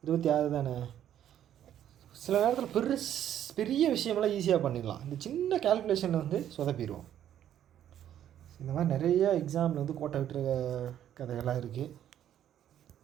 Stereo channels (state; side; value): quieter; left; 10.7 dB